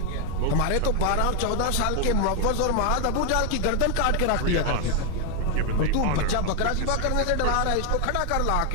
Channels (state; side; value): different; both; correlation 0.01